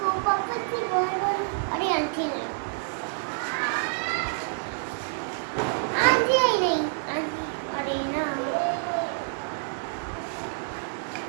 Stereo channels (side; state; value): left; silent; 60 dB below the other